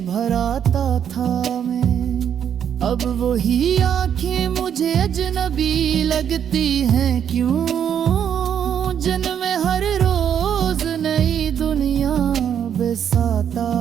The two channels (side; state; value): left; quieter; 8.7 dB